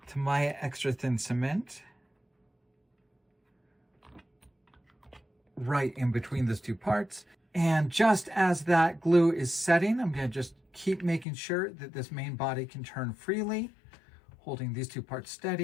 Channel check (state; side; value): drops out; right; at 11.2 s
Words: Tamiya extra thin cement right in between those two parts. And just as that glue is setting, I'm going to just keep making sure that this main body can turn freely, holding these two parts